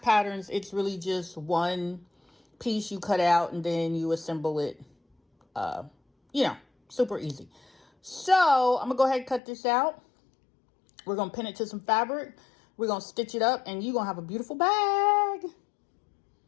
patterns, it's really just one piece you cut out and then you assemble it, super easy. So I'm gonna go ahead and cut this out. We're gonna pin it to some fabric. We're gonna stitch it up and you're gonna have a beautiful bag.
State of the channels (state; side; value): drops out; right; at 9.4 s